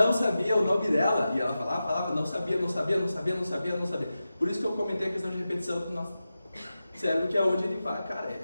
sabia o nome dela. E ela falava, não sabia. Por isso que eu comentei a questão de repetição do nosso cérebro, que é onde ele fala, cara,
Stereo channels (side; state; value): both; inverted; correlation -0.93